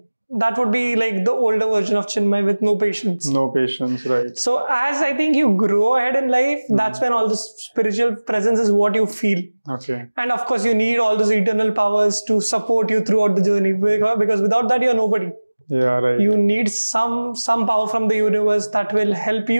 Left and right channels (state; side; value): inverted; both; correlation -1.00